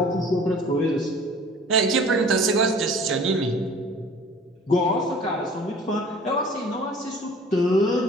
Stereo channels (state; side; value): normal; both; correlation 0.48